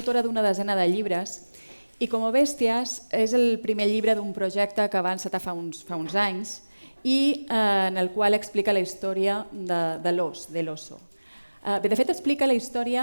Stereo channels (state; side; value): inverted; both; correlation -1.00